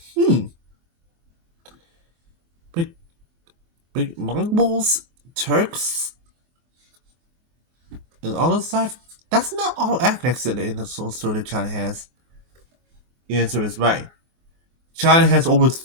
big big Mongols, Turks, and all this stuff? That's not all ethnics in the soul story that China has. The answer is right. China has over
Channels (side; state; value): left; late; 24 ms